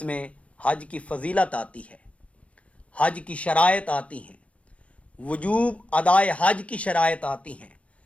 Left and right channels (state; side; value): late; right; 0.063 ms